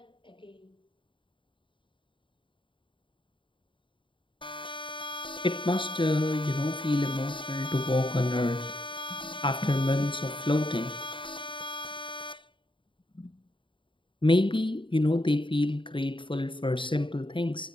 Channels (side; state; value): right; late; 0.24 ms